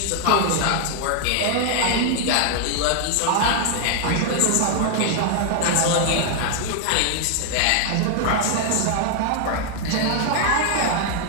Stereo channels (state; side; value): different; both; correlation 0.00